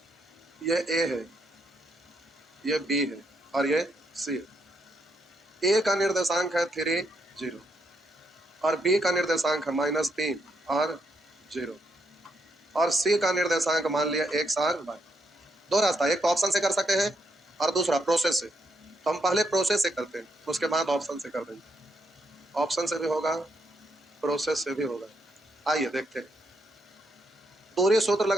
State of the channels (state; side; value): normal; both; correlation 0.78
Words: ये ए है, ये बी है और ये सी है। ए का निर्देशांक है 3 0 और बी का निर्देशांक है -3 और 0 और सी का निर्देशांक मान लिया x और y। दो रास्ता, एक तो ऑप्शन से कर सकते हैं और दूसरा प्रोसेस से। तो हम पहले प्रोसेस से करते हैं, उसके बाद ऑप्शन से कर देंगे। ऑप्शन से भी होगा, प्रोसेस से भी होगा। आइए देखते हैं। दूरी सूत्र